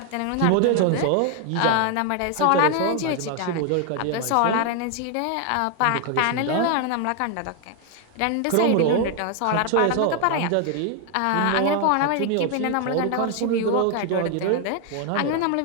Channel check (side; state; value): both; different; correlation 0.01